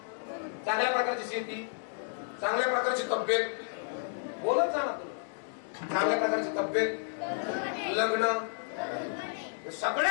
चांगल्या प्रकारची शेती, चांगल्या प्रकारची तब्येत. बोलत जा ना तुम्ही. चांगल्या प्रकारची तब्येत, लग्न,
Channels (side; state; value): right; silent; digital silence